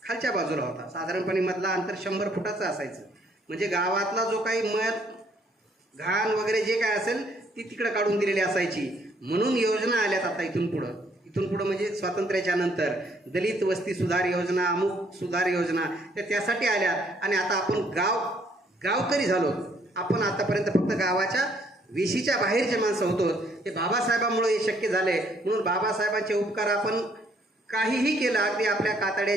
खालच्या बाजूला होता. साधारणपणे मधला अंतर 100 फुटाचं असायचं. म्हणजे गावातला जो काही मध घाण वगैरे जे काय असेल ती तिकडं काढून दिलेली असायची. म्हणून योजना आल्यात आता इथून पुढं म्हणजे स्वातंत्र्याच्या नंतर दलित वस्ती सुधार योजना, अमुक सुधार योजना त्यासाठी आल्यात. आणि आता आपण गावकरी झालो. आपण आतापर्यंत फक्त गावाच्या वेशीच्या बाहेरचे माणसं होतो. हे बाबासाहेबांमुळे हे शक्य झाले. म्हणून बाबासाहेबांचे उपकार आपण काहीही केलं, अगदी आपल्या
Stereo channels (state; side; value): normal; both; correlation 0.66